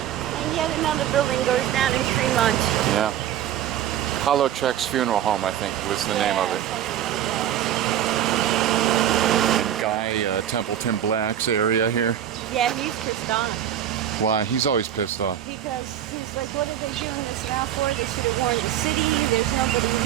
yet another building goes down in Tremont. Yeah. Halowchuk's Funeral Home, I think, was the name of it. Guy, Templeton Black's area here. Yeah, he's pissed off. Why? He's always pissed off. Because he's like, what are they doing this now for? They should have warned the city. There's nobody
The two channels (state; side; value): quieter; left; 10.8 dB